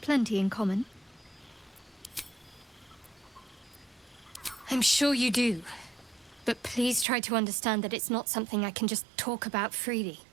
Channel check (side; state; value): left; drops out; at 7.1 s